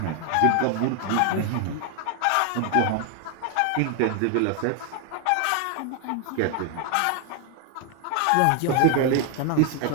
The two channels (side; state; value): both; different; correlation 0.00